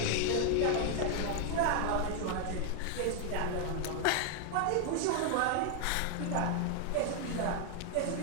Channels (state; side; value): different; both; correlation 0.00